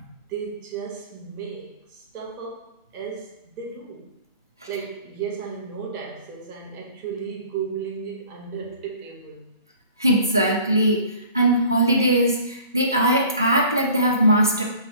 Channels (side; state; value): both; inverted; correlation -0.47